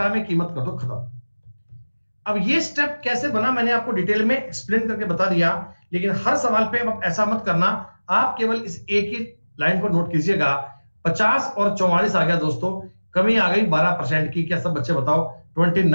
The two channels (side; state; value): both; inverted; correlation -1.00